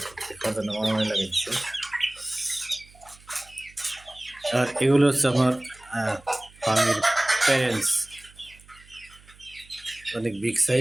খাওয়ার মারামারি লাগাইছে। আর এগুলো হচ্ছে আমার ফার্মির প্যারেন্টস, অনেক বিগ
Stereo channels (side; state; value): right; noise; hum, 25 dB below the sound